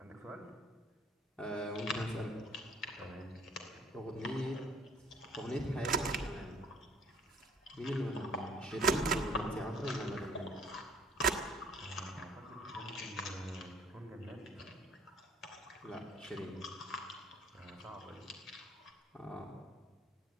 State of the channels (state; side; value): normal; both; correlation 0.58